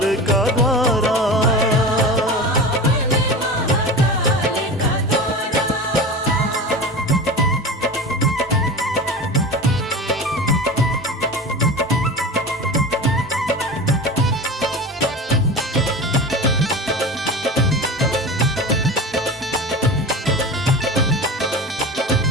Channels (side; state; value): both; normal; correlation 0.31